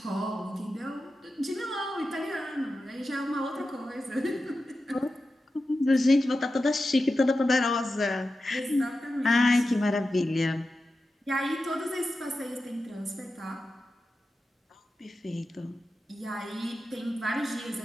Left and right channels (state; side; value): normal; both; correlation 0.92